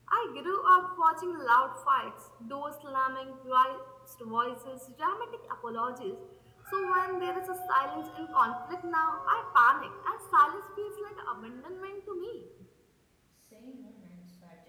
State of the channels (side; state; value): both; identical; correlation 1.00